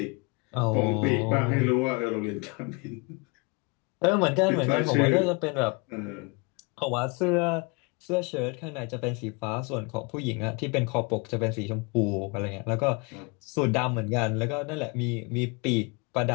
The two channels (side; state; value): right; quieter; 30.0 dB